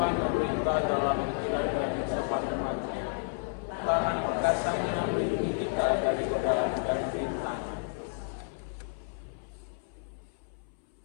memerintah dalam menjalani kehidupan umatnya. Tangan perkasanya melindungi kita dari godaan dan rintangan.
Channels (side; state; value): right; silent; 57 dB below the other